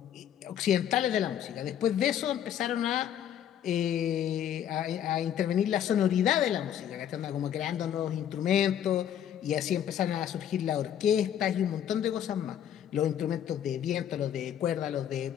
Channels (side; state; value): right; quieter; 10.0 dB